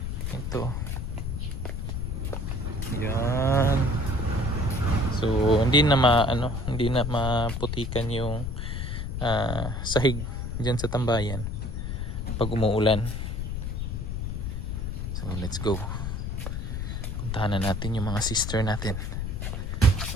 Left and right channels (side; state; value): left; noise; rumble, 3 dB below the sound